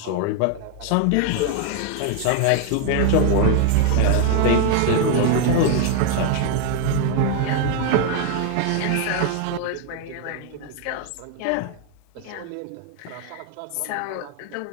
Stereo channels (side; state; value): both; different; correlation 0.00